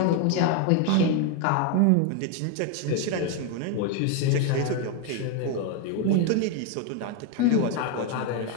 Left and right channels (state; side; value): different; both; correlation 0.01